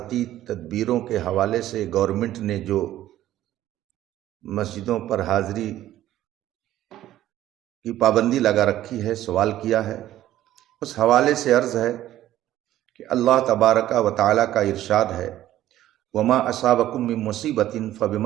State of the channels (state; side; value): quieter; left; 13.5 dB